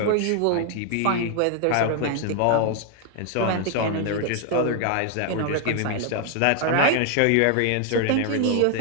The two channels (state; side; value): different; both; correlation 0.00